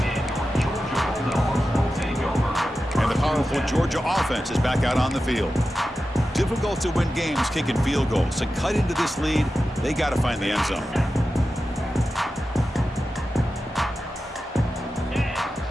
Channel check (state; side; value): normal; both; correlation 0.92